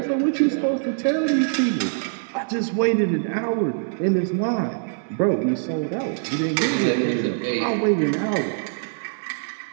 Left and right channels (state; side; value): silent; left; digital silence